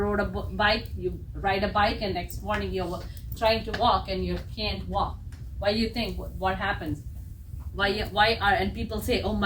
a bike, you ride a bike and next morning you're trying to walk and you can't walk. Why do you think? What happens? And people say, oh,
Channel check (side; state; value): both; identical; correlation 1.00